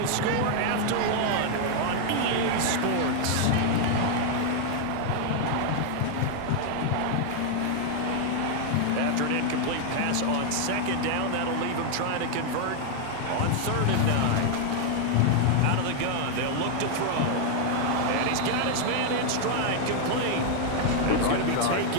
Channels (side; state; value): both; different; correlation 0.00